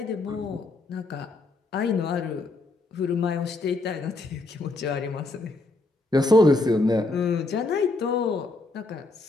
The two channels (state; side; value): quieter; right; 3.1 dB